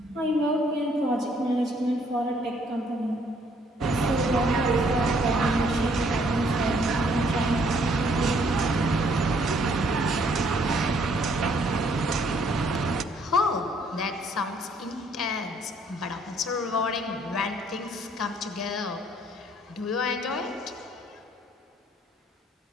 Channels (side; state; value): both; normal; correlation 0.65